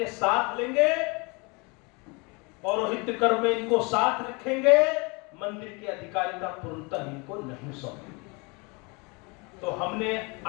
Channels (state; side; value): quieter; right; 29.3 dB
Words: साथ लेंगे, पौरोहित्य कर्म में इनको साथ रखेंगे, मंदिर की अधिकारिता पूर्णतः इनको नहीं सौंपेंगे। तो हमने